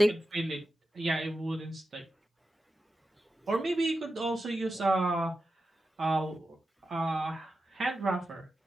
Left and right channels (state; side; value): normal; both; correlation 0.91